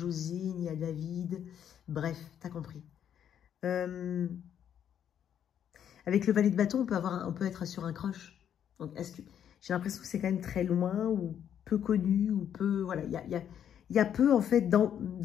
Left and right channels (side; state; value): right; quieter; 9.3 dB